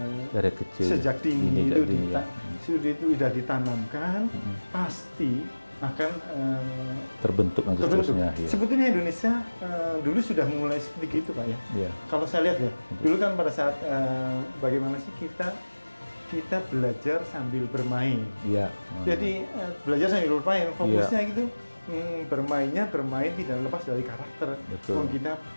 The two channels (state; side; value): inverted; both; correlation -1.00